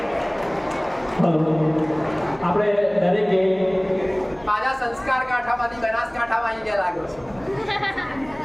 આપણે દરેકે પાછા સંસ્કાર કાંઠામાંથી બનાસકાંઠામાં આવી ગયા લાગ્યો છે.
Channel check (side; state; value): left; noise; hum, 25 dB below the sound